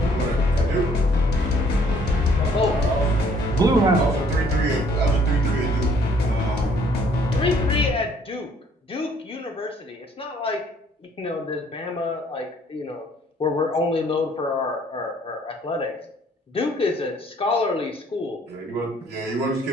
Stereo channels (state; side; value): normal; both; correlation 0.62